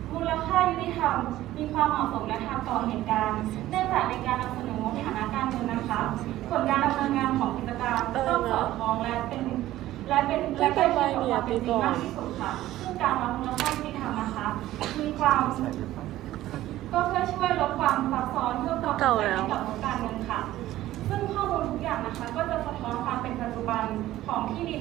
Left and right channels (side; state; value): left; quieter; 14.8 dB